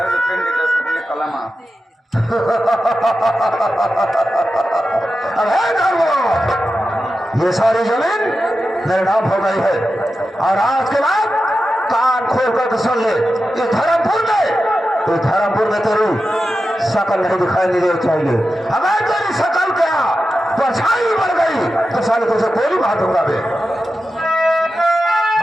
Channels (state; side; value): normal; both; correlation 0.91